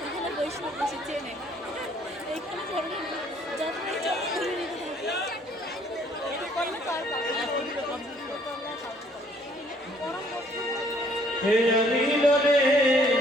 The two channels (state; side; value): normal; both; correlation 0.62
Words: বৈষ্ণব বেশি চেনে এইখানে ধরনের যতই যত ধরে নিতে থাকি করলে তার